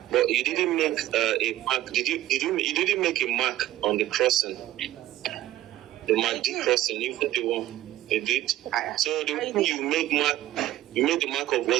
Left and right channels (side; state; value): left; quieter; 14.5 dB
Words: But you didn't make a mark. You didn't make a mark on the crossing. The MACD crossing, even the one you did. So the one you made the mark of,